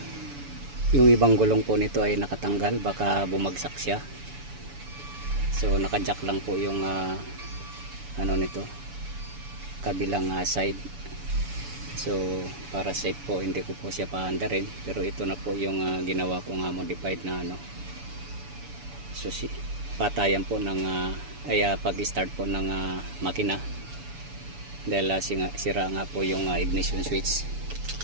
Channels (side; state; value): left; late; 7.0 ms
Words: yung ibang gulong po nito ay nakatanggal, baka bumagsak siya. So naka-jack lang po yung ano nito, kabilang side. So para safe po hindi ko po siya paandarin, pero ito na po yung ginawa ko modified na susi, patayan po ng pag-start po ng makina. Dahil sira nga po yung ignition switch.